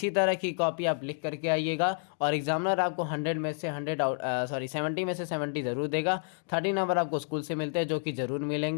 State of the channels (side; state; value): right; silent; 58 dB below the other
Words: तरह की कॉपी आप लिख करके आइएगा और एग्जामिनर आपको 100 में से 100 70 में से 70 ज़रूर देगा। 30 नंबर आपको स्कूल से मिलते हैं, जो कि ज़रूर